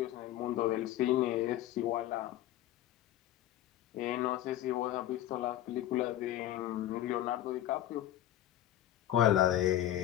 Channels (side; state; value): right; quieter; 13.0 dB